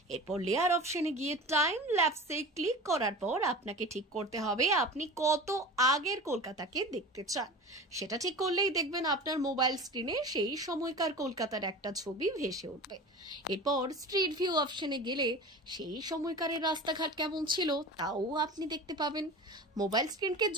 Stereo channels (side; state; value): both; normal; correlation 0.34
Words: এরপর লেয়ার অপশনে গিয়ে টাইম ল্যাপসে ক্লিক করার পর আপনাকে ঠিক করতে হবে আপনি কত আগের কলকাতাকে দেখতে চান। সেটা ঠিক করলেই দেখবেন আপনার মোবাইল স্ক্রিনে সেই সময়কার কলকাতার একটা ছবি ভেসে উঠবে। এরপর স্ট্রিট ভিউ অপশনে গেলে সেই সময়কারের রাস্তাঘাট কেমন ছিল তাও আপনি দেখতে পাবেন। মোবাইল স্ক্রিনকে